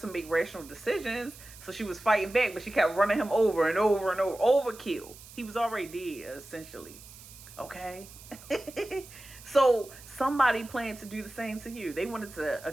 make rational decisions, so she was fighting back, but she kept running him over and over and over. Overkill. He was already dead, essentially. Okay? So somebody planned to do the same to you. They wanted to,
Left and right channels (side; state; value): right; noise; hiss, 18 dB below the sound